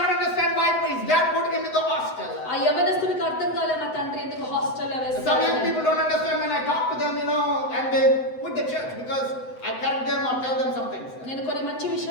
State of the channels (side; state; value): right; late; 7.9 ms